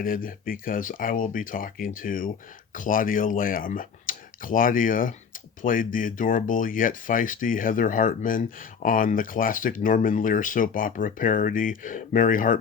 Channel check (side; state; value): right; quieter; 6.5 dB